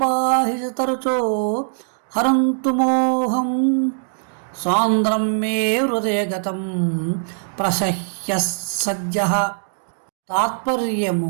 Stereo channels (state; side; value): silent; left; digital silence